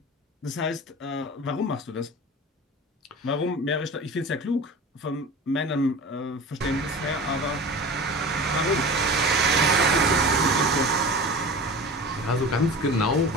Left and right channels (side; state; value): both; normal; correlation 0.35